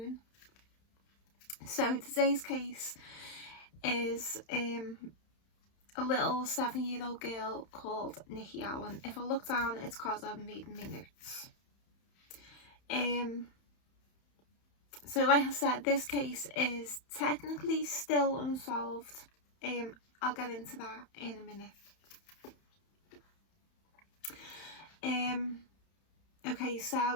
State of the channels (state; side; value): late; right; 31 ms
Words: So today's case is a little 7-year-old girl called Nikki Allan. If I look down, it's because I'm reading my notes. So like I said, this case is technically still unsolved. I'll get into that in a minute. Okay,